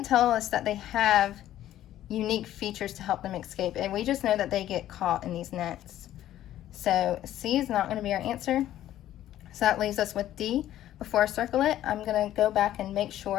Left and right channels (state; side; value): quieter; right; 12.8 dB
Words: tell us that they have unique features to help them escape, and we just know that they get caught in these nets. So C is not going to be our answer. So that leaves us with D. Before I circle it, I'm going to go back and make